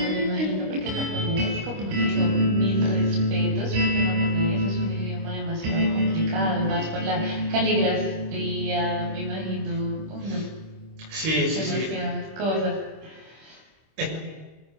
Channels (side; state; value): left; late; 26 ms